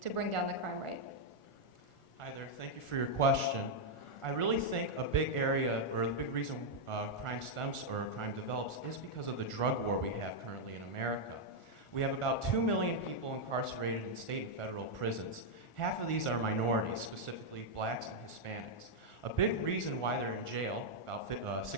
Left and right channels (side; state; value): right; late; 1.4 ms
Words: to bring down the crime rate. Hi there, thank you for your question. I really think a big area, or the big reason crime stems or crime develops is because of the drug war we have currently in America. We have about 2 million people incarcerated in state and federal prisons. Half of these are minorities, specifically blacks and Hispanics. A big reason why they're in jail, about